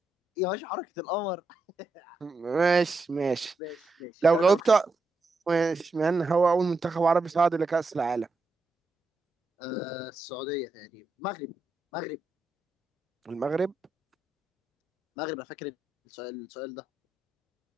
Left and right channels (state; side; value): quieter; left; 3.1 dB